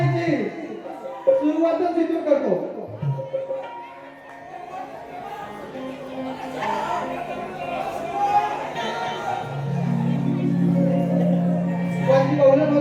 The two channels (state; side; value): identical; both; correlation 1.00